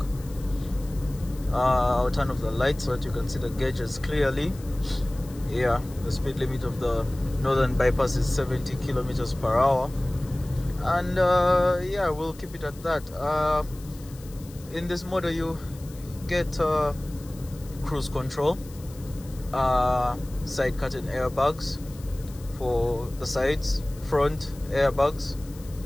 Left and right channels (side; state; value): left; noise; hiss, 21 dB below the sound